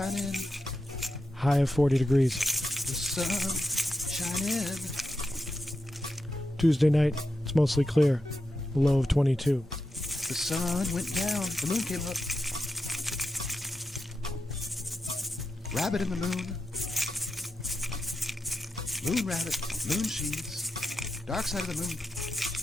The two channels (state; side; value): normal; both; correlation 0.88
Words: in. High of 40 degrees. The sun shine in. Tuesday night, it's mostly clear. Low of 22. The sun went down. The moon came up. Rabbit in the moon. Moon rabbit. Moon cheese. Dark side of the moon.